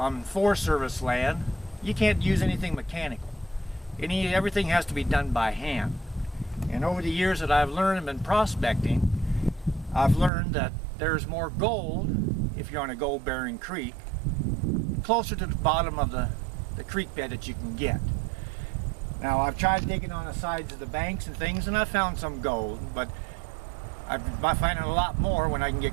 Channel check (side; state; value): left; drops out; at 10.3 s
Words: Forest Service land, you can't use anything mechanical. Everything has to be done by hand. And over the years that I've learned and been prospecting, I've learned that there's more gold, if you're on a gold-bearing creek, closer to the bottom of the creek bed that you can get. Now, I've tried digging on the sides of the banks and things, and I've found some gold, but I'm finding a lot more when I can get